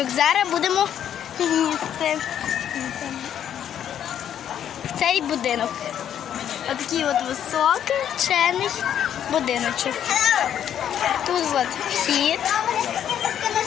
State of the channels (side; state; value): right; quieter; 9.7 dB